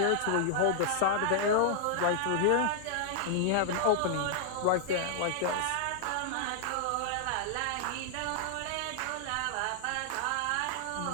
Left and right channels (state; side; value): different; both; correlation -0.01